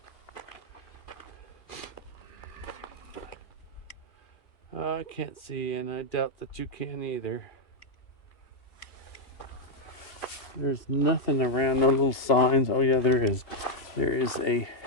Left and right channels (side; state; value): right; late; 2.8 ms